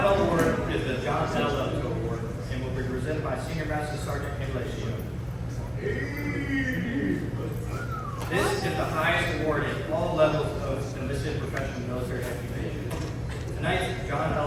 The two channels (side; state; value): both; identical; correlation 1.00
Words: award is the John L. Award and will be presented by Senior Master Sergeant Estacio. This is the highest award in all levels of enlisted professional military occupation. Tonight's John